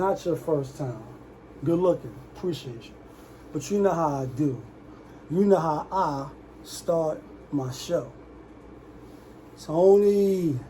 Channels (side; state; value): both; identical; correlation 1.00